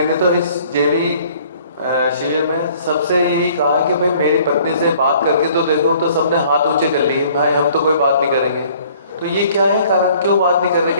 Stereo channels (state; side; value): inverted; both; correlation -0.56